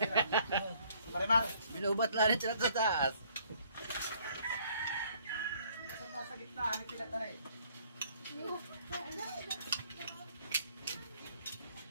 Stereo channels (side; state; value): both; inverted; correlation -0.62